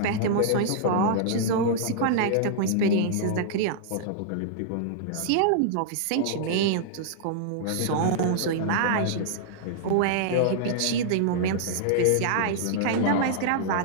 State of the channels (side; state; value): both; different; correlation -0.01